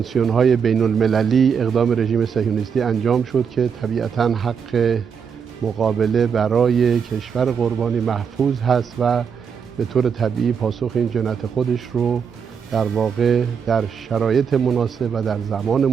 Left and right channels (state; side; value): quieter; left; 6.8 dB